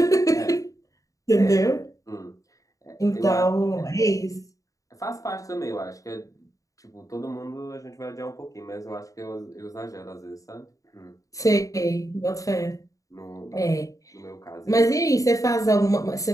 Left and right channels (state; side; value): late; right; 0.16 ms